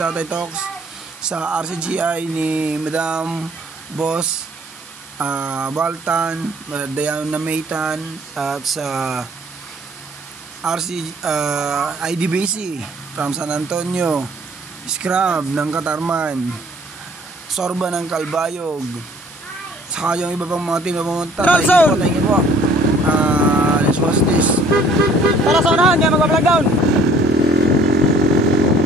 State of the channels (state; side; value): normal; both; correlation 0.57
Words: Talks, sa RCGI ni Madam Boss Baltan, Diana Maytan, at sa IDBC from San Antonio, Scrub ng Katarman, Sorba ng Calbayog, saka yung iba pang mga team na pumunta. Thank you po. Let's watch this. Tara sa unahan, kaya mag-vlog down.